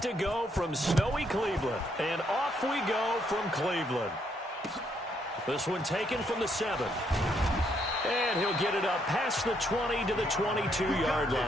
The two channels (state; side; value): normal; both; correlation 0.73